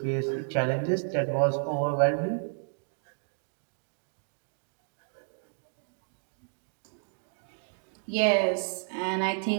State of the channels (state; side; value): silent; left; digital silence